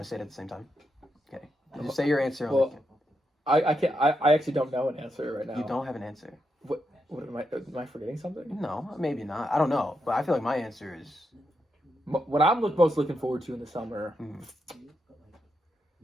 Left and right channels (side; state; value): both; normal; correlation 0.83